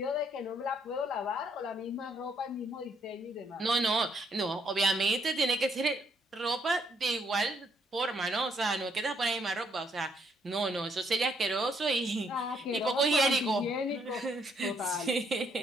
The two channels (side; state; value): both; normal; correlation 0.70